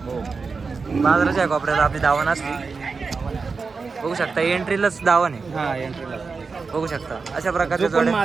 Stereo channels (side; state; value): left; quieter; 4.7 dB